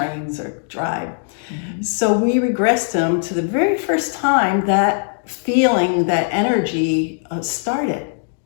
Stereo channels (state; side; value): silent; right; digital silence